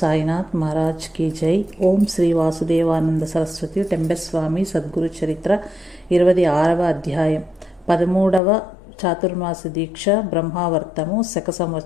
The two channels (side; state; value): right; drops out; at 8.4 s